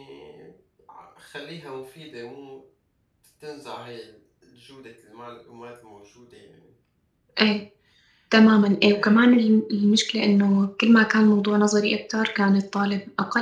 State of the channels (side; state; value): both; identical; correlation 1.00